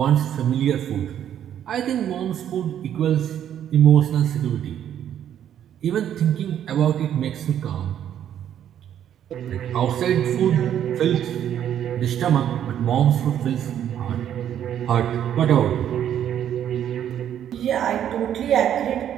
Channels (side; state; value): left; quieter; 10.1 dB